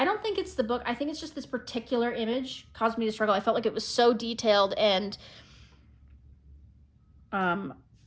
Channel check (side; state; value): both; identical; correlation 1.00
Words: think it's the book. I think it's just this particular image caused me to struggle. I felt like it was so detailed and,